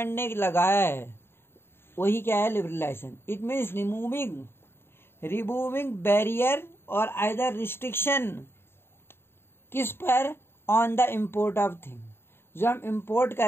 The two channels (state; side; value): late; right; 0.11 ms